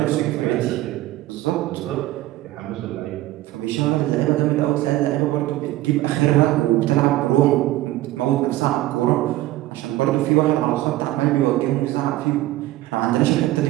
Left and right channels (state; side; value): quieter; left; 16.3 dB